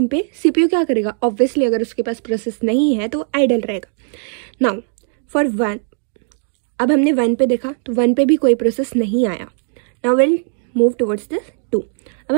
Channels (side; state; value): left; silent; digital silence